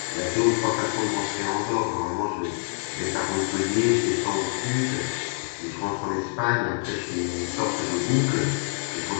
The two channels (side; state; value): right; silent; digital silence